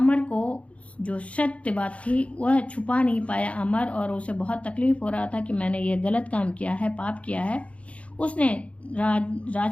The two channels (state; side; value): late; right; 0.063 ms